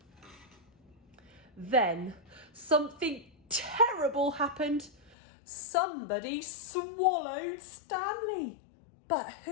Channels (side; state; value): right; drops out; at 5.2 s